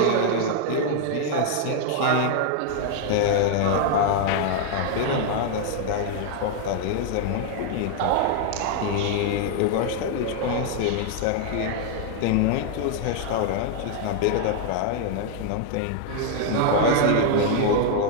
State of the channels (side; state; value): both; different; correlation 0.00